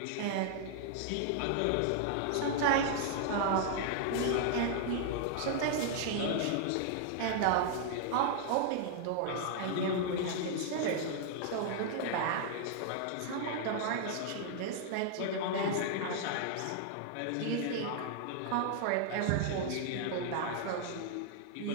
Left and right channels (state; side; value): different; both; correlation -0.01